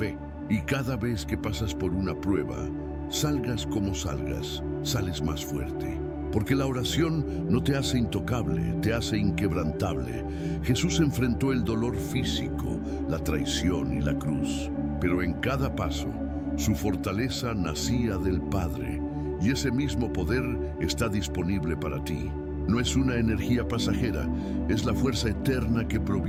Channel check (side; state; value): both; identical; correlation 1.00